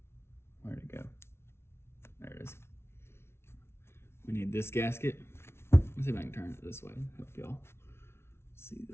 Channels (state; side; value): late; right; 0.12 ms